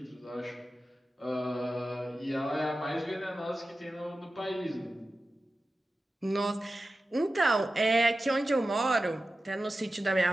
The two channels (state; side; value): normal; both; correlation 0.94